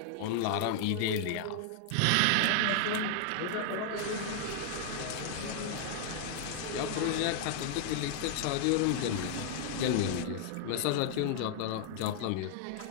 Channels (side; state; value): both; different; correlation 0.00